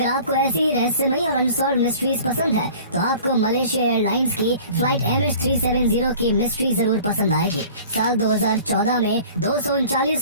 आपको ऐसी ही रहस्यमयी और अनसॉल्व्ड मिस्ट्रीज पसंद है तो आपको मलेशिया एयरलाइंस की फ्लाइट MH370 की मिस्ट्री जरूर पसंद आएगी। साल 2014 में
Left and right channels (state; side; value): inverted; both; correlation -0.46